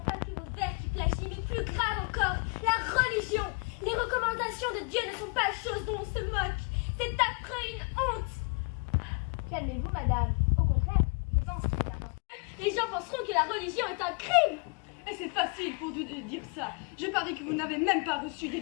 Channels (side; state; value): right; quieter; 34.6 dB